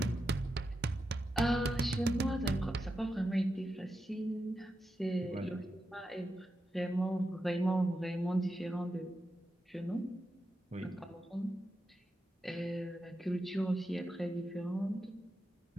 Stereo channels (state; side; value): normal; both; correlation 0.88